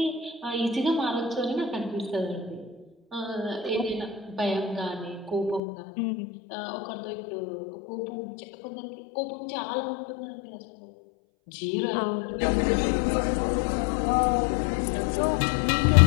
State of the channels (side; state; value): right; drops out; at 5.6 s